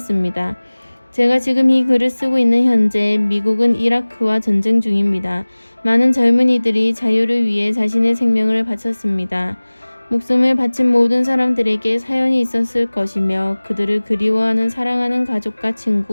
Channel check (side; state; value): both; inverted; correlation -1.00